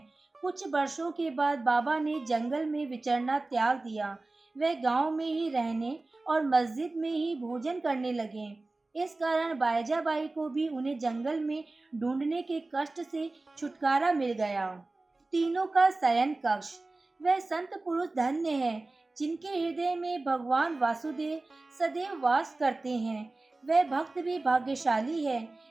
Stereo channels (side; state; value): left; quieter; 3.2 dB